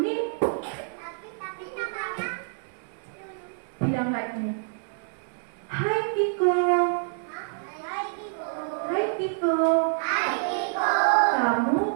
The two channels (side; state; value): left; silent; digital silence